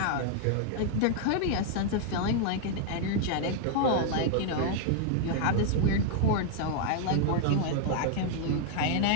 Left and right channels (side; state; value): both; different; correlation 0.00